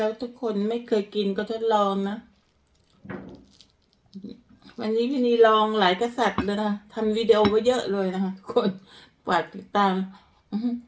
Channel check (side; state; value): both; identical; correlation 1.00